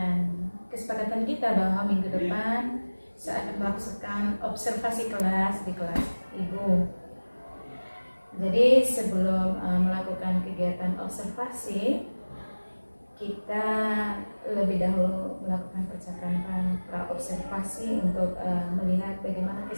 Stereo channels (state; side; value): inverted; both; correlation -1.00